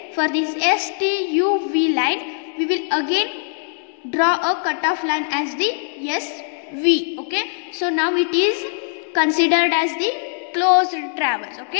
for this S, T, U, V line, we will again draw a cutoff line as the S, V. Okay, so now it is considered as the closed traverse.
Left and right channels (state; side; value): silent; right; 61 dB below the other